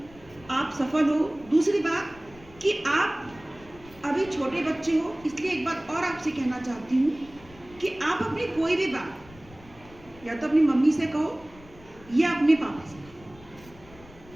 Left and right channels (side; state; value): left; noise; rumble, 22 dB below the sound